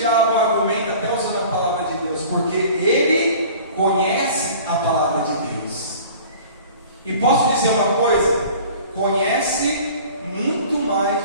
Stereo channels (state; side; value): inverted; both; correlation -0.44